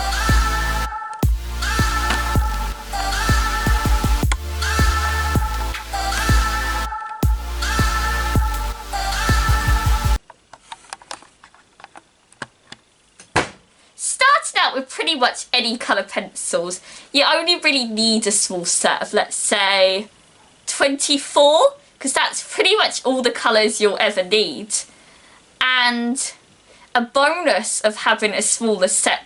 With pretty much any colour pencils, you only really need a small set of, let's say, 24, because that's pretty much all the colours you'll ever need. And a bonus of having a smaller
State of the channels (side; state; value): both; identical; correlation 1.00